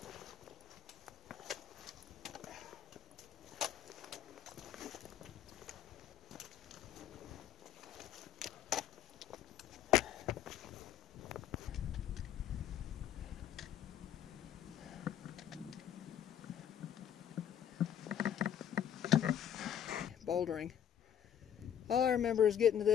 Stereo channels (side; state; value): right; quieter; 9.6 dB